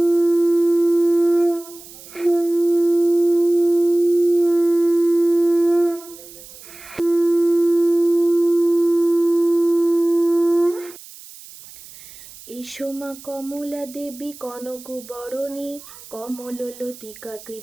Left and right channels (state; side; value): noise; right; hiss, 19 dB below the sound